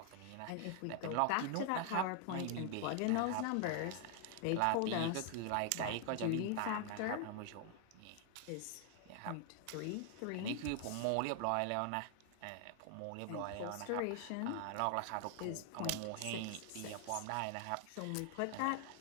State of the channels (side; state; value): both; different; correlation 0.00